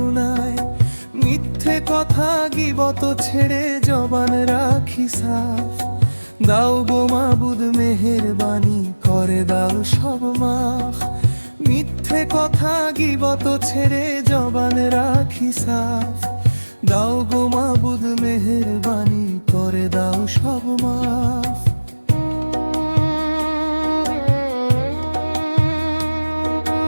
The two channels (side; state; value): both; inverted; correlation -1.00